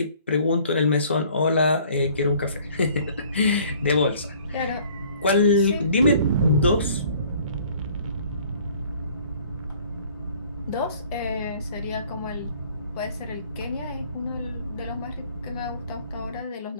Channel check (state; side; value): inverted; both; correlation -0.55